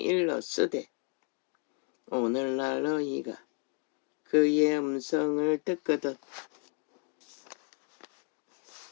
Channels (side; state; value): right; quieter; 38.4 dB